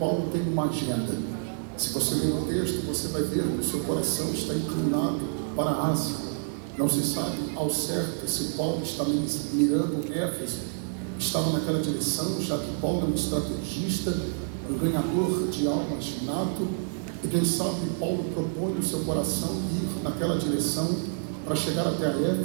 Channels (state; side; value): silent; left; digital silence